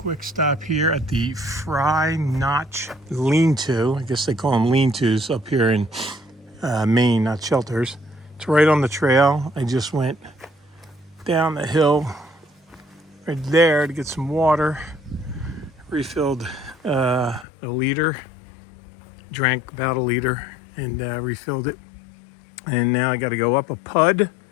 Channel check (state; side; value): drops out; right; at 17.4 s